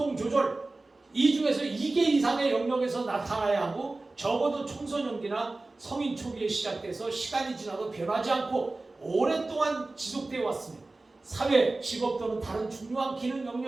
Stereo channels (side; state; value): left; quieter; 3.2 dB